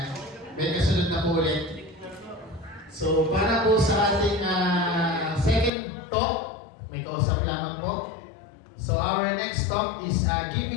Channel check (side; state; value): right; drops out; at 5.7 s